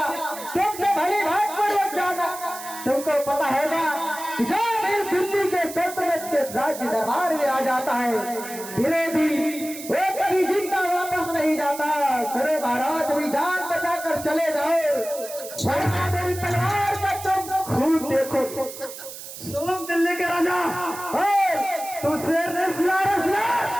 तुमने भली भाग पर जाना। तुमको पता होगा जो भी दिल्ली के सल्तनत के राज्य दरबार में आ जाता है विरोधी वो कभी जिंदा वापस नहीं जाता। सुनो महाराज, भी जान बचा कर चले जाओ वरना मेरी तलवार का तुम खून देखो। सुन दिल्ली के राजा, तू शेर ने सुना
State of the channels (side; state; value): right; noise; hiss, 12 dB below the sound